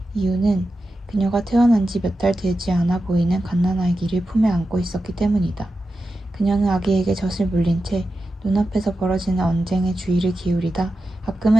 이유는 그녀가 태어난 지 몇 달 되지 않아 보이는 갓난아기를 품에 안고 있었기 때문이다. 그녀는 아기에게 젖을 물린 채 눈앞에서 벌어지는 언쟁에 주의를 기울이다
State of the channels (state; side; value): normal; both; correlation 0.91